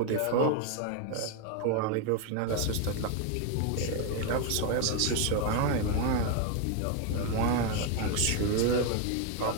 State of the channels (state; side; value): different; both; correlation 0.01